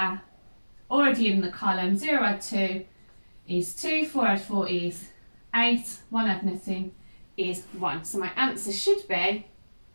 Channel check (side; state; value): both; inverted; correlation -1.00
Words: already in the column. 0 add 2 is 2, 4 add 4 is 8, 1 add nothing is 1. So my answer should be